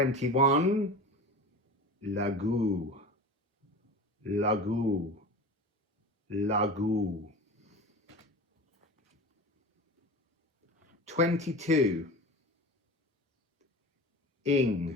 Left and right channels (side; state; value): both; normal; correlation 0.33